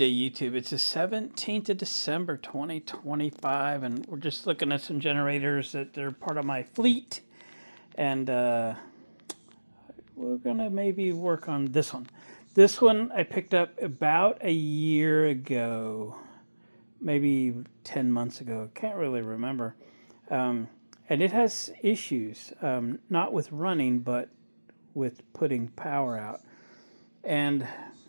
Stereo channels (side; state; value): both; inverted; correlation -1.00